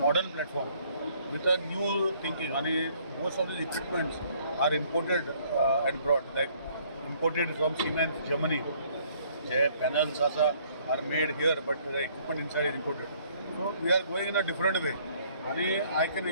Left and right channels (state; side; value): inverted; both; correlation -0.62